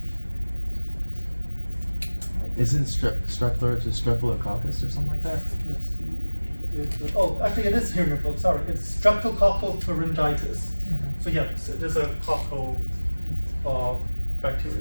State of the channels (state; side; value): inverted; both; correlation -1.00